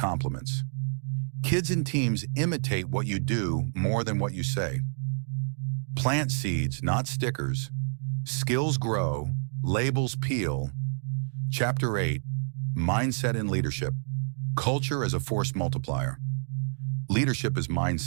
Kids and teams imitate what you do more than what you say. Plant seeds, not stickers. Skills grow, labels peel. Chapter 8, Mindset and Leadership. Culture as a force multiplier. Leadership is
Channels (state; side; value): silent; left; digital silence